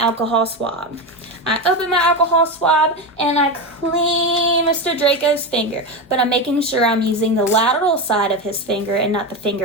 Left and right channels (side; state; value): both; normal; correlation 0.16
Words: swab. I open my alcohol swab and I clean Mr. Draco's finger, but I'm making sure I'm using the lateral side of his finger and not the